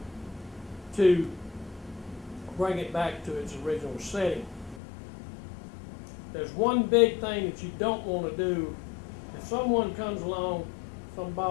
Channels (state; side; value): drops out; right; at 4.8 s